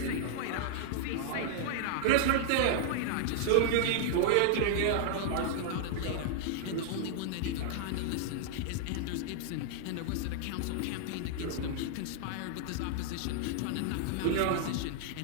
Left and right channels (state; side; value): different; both; correlation -0.01